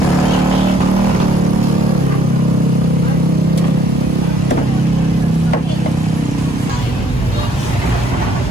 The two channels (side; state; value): both; normal; correlation 0.63